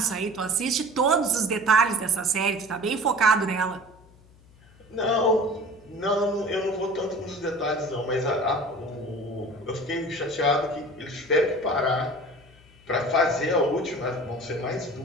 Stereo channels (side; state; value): left; noise; hum, 26 dB below the sound